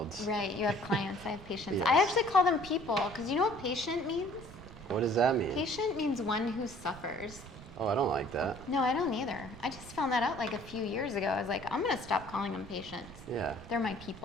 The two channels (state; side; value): noise; right; rumble, 16 dB below the sound